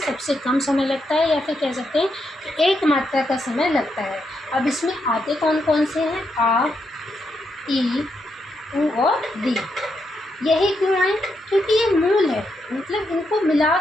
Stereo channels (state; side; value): normal; both; correlation 0.81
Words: या फिर कह सकते हैं कि एक मात्रा का समय लगता है। अब इसमें आते कौन कौन से हैं? आ, ई, उ और री। यही क्यों आए? क्योंकि ये मूल है, मतलब इनको